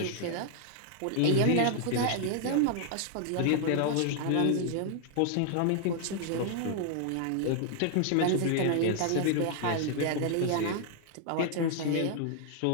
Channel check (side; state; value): both; different; correlation 0.00